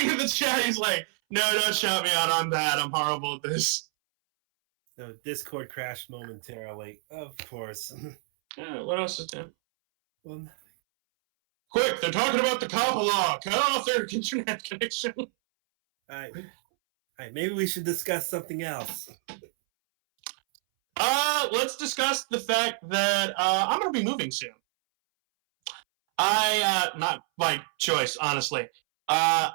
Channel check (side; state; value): left; silent; 60 dB below the other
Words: at the chat. He's like, no, don't shout me out. I'm bad. I'm horrible at this. So Discord crashed momentarily, of course. Yeah, what else is there? Well, quick, they're talking about the COPPA law. Cut off their internet connection. All right, maybe we should discuss something else. Let's discuss the fact that I'm going to be moving soon. Not by choice, honestly. I